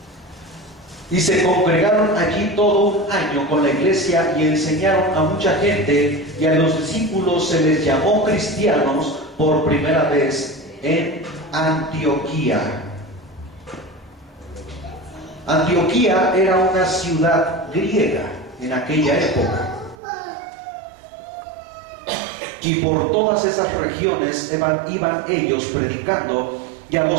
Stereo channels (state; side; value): drops out; left; at 20.0 s